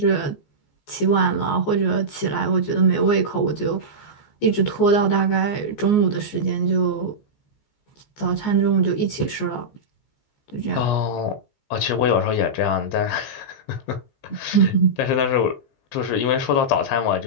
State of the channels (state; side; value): late; right; 14 ms